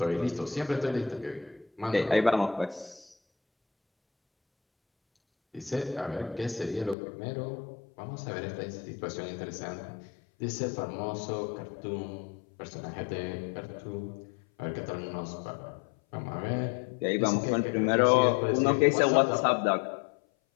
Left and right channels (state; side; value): drops out; right; at 7.0 s